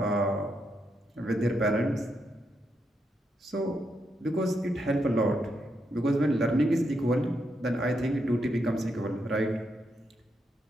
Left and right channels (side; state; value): both; normal; correlation 0.81